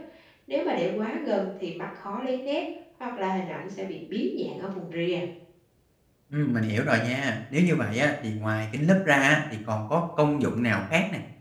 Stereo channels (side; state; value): both; identical; correlation 1.00